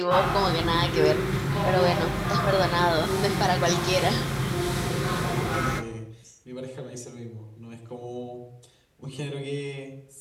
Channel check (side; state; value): both; identical; correlation 1.00